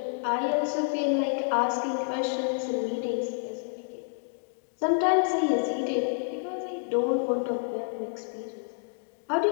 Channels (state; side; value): silent; right; digital silence